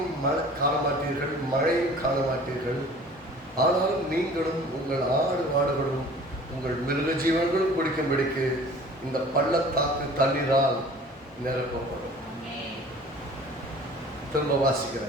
காண மாட்டீர்கள், மழையும் காண மாட்டீர்கள். ஆனாலும் நீங்களும் உங்கள் ஆடு மாடுகளும் உங்கள் மிருக ஜீவன்களும் குடிக்கும்படிக்கு இந்த பள்ளத்தாக்கு தண்ணீரால் நிரப்பப்படும். திரும்ப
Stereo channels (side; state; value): both; normal; correlation 0.47